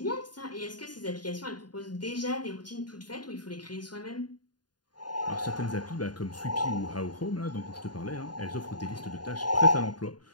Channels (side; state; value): right; late; 0.70 ms